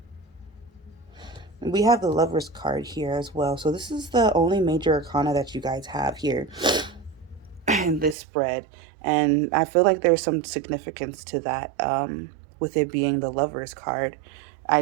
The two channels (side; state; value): left; drops out; at 8.2 s